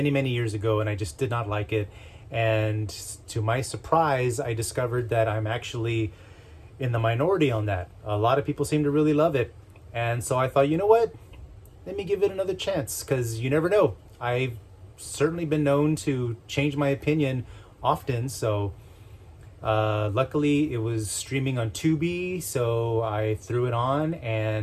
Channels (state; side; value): identical; both; correlation 1.00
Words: years ago and I just did not like it. And to my surprise, I discovered that I'm actually in the minority on that. A lot of people seem to really love it. And so I thought, you know what? Let me give it another chance because you never know. I've certainly been known to change my opinion often. So luckily it was streaming on Tubi. So I threw it on